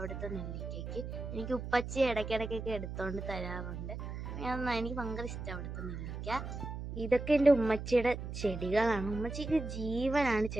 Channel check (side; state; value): right; noise; hum, 7 dB below the sound